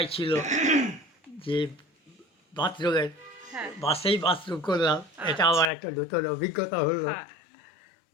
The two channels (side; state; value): right; drops out; at 5.7 s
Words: ছিল যে বাথরুমের হ্যাঁ বাসেই বাথরুম করলাম, এটা আমার একটা নতুন অভিজ্ঞতা হলো। হ্যাঁ।